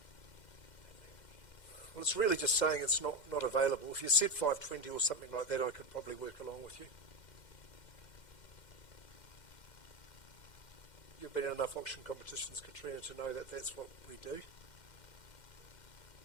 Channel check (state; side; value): late; right; 2.1 ms